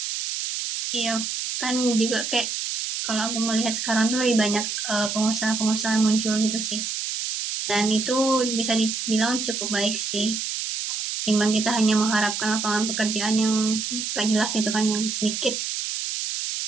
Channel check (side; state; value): right; noise; hiss, 3 dB below the sound